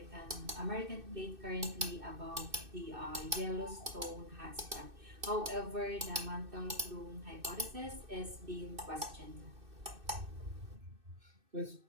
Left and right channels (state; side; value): late; left; 2.6 ms